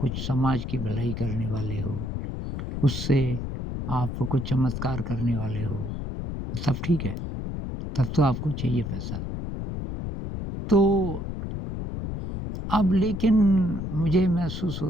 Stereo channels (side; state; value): left; noise; rumble, 5 dB below the sound